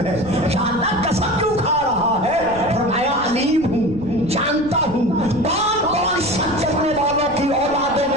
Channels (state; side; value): noise; right; rumble, 16 dB below the sound